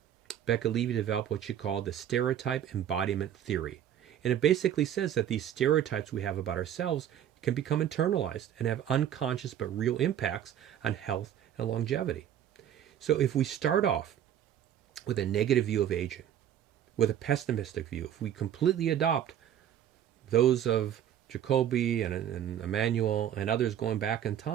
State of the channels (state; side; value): quieter; left; 10.3 dB